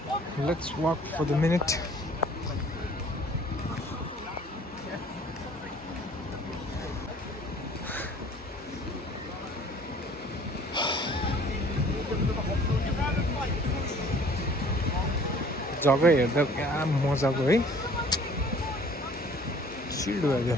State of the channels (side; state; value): both; normal; correlation 0.52